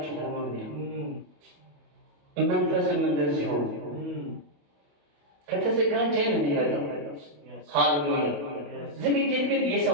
ሆኖ ነው። መንፈስም እንደዚህ ሆኖ ከተዘጋጀን የሚመጣው ሃሌሉያ። ዝግጅት ግን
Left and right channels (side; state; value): left; late; 28 ms